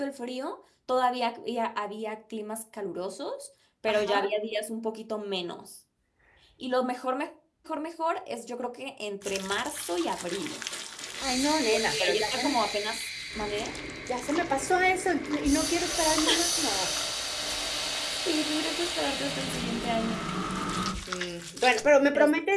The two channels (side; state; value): both; identical; correlation 1.00